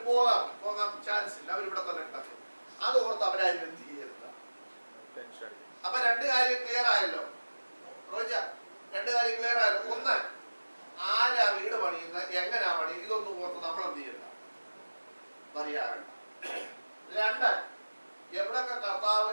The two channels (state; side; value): inverted; both; correlation -1.00